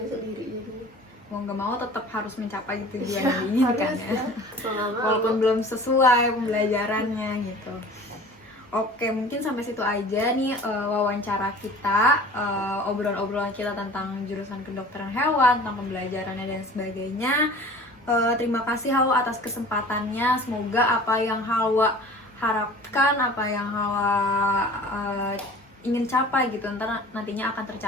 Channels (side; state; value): both; normal; correlation 0.43